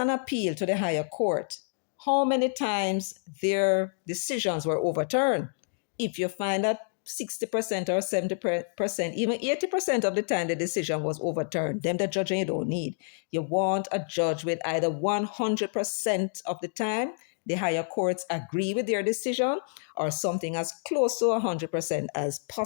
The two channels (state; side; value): silent; right; digital silence